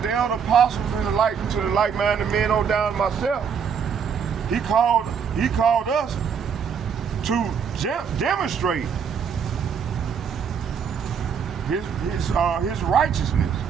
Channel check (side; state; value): left; quieter; 6.9 dB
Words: the elder apostles and to the like-minded men on down to myself. He called us to demonstrate his righteousness.